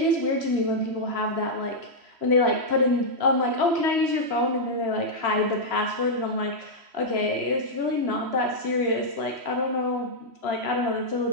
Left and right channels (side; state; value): left; late; 3.0 ms